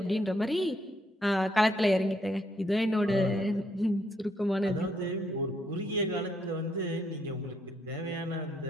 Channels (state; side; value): normal; both; correlation 0.73